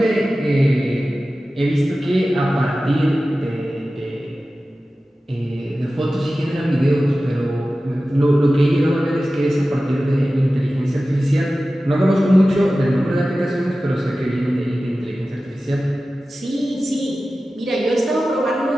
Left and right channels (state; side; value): normal; both; correlation 0.95